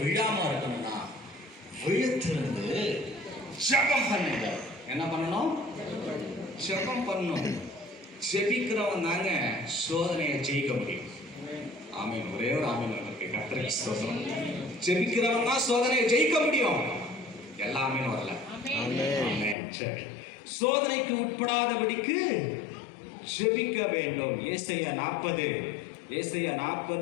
விழாம இருக்கணும்னா, விழுத்திருந்து ஜெபம் பண்ணுங்க. என்ன பண்ணணும்? ஜெபம் பண்ணணும். ஜெபிக்கிறவன் தாங்க சோதனையை ஜெயிக்க முடியும். ஆமீன். ஒரே ஒரு ஆமீன் இருக்கு. கர்த்தருக்கு ஸ்தோத்திரம். ஜெபிக்கிறவன் தான் சோதனையை ஜெயிக்க முடியும். எல்லாமே வரல. ஆமென். சரி. சோதனைக்கு உட்படாதபடிக்கு ஜெபிக்க வேண்டும். ஏசாயா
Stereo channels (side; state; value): right; drops out; at 19.6 s